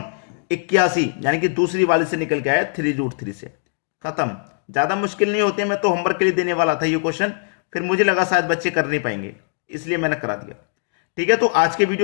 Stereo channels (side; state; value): right; silent; 65 dB below the other